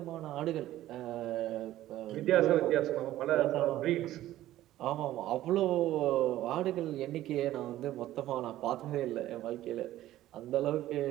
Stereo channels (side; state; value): left; quieter; 14.3 dB